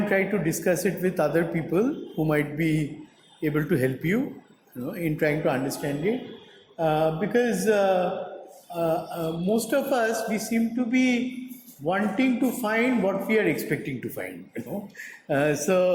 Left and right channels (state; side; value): identical; both; correlation 1.00